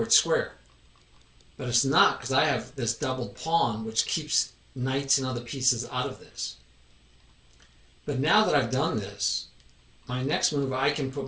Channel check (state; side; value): identical; both; correlation 1.00